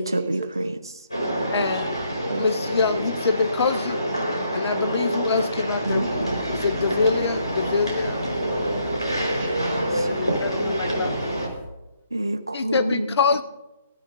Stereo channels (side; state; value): both; inverted; correlation -0.72